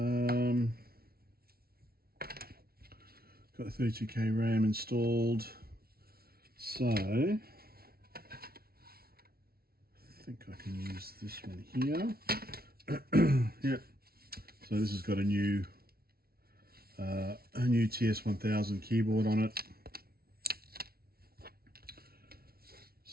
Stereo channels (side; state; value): left; late; 0.44 ms